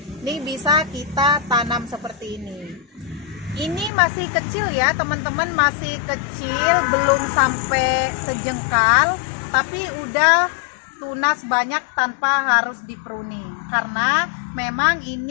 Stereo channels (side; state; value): right; drops out; at 3.9 s